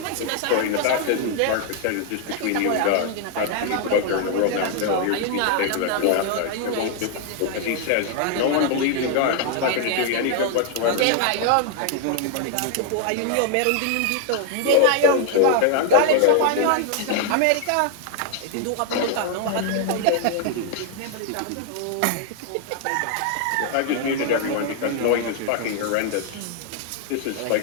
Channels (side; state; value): both; different; correlation 0.00